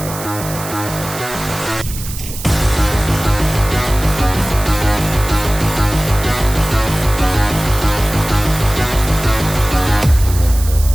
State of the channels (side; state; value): right; noise; hiss, 11 dB below the sound